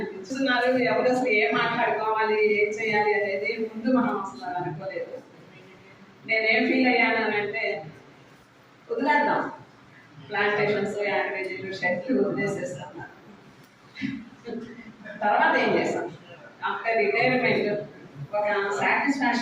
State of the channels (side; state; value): both; identical; correlation 1.00